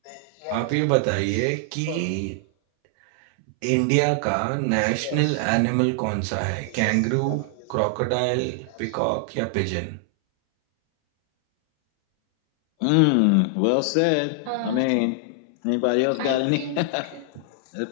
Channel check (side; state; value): both; different; correlation 0.00